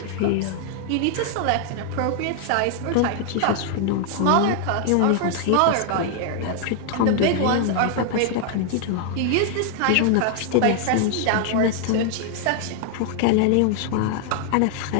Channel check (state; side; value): different; both; correlation 0.00